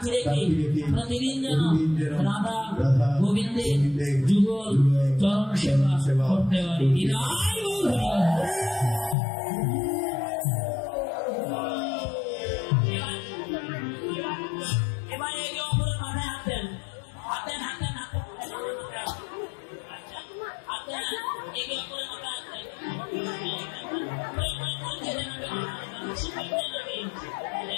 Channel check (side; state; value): right; drops out; at 9.2 s